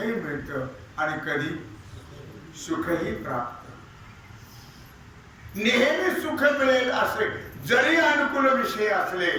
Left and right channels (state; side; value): identical; both; correlation 1.00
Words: मिळतं आणि कधी सुखही प्राप्त. नेहमी सुख मिळेल असे जरी अनुकूल विषय असले